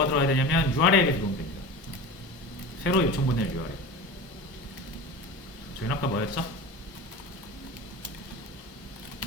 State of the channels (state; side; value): normal; both; correlation 0.31